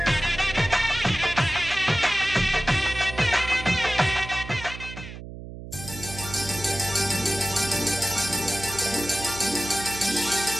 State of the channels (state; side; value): noise; right; hum, 12 dB below the sound